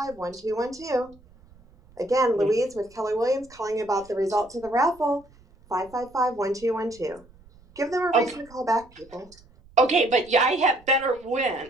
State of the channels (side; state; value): right; noise; rumble, 26 dB below the sound